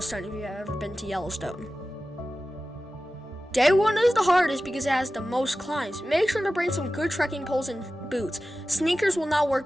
if you've ever been to Yellowstone. Day 1 is the hardest because it has the most climbs. Make sure to bring some good trekking poles and boots. Sneakers will not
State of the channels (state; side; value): normal; both; correlation 0.95